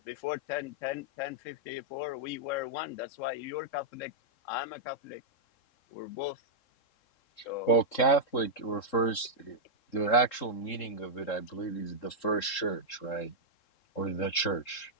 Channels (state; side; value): late; right; 3.7 ms